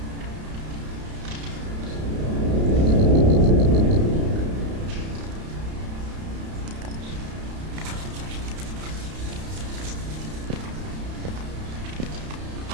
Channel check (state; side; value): late; left; 32 ms